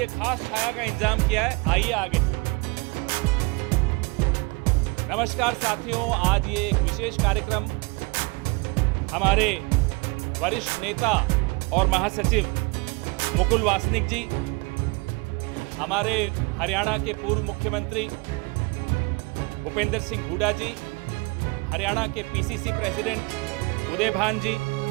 खास छाया का इंतजाम किया है, आइए आगे। नमस्कार साथियों, आज ये एक विशेष कार्यक्रम हमारे वरिष्ठ नेता और महासचिव मुकुल वासनिक जी, हमारे हरियाणा के पूर्व मुख्यमंत्री भूपेंद्र सिंह हुड्डा जी, हरियाणा के पीसीसी प्रेसिडेंट उदय भान जी,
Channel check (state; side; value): quieter; left; 28.2 dB